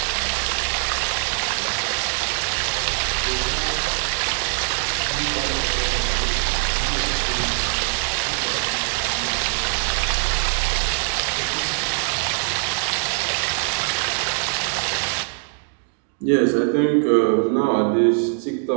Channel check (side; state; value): left; silent; digital silence